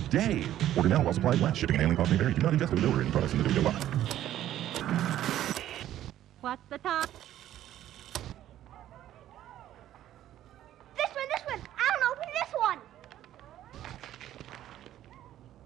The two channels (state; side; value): quieter; left; 12.5 dB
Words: Order now while supplies last. Shipping and handling costs may vary. Do not ingest or deliver any products in the video box. What's the time? This one! I don't open this one!